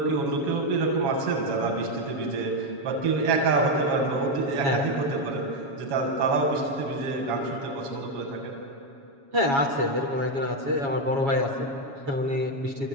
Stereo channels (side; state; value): left; late; 7.3 ms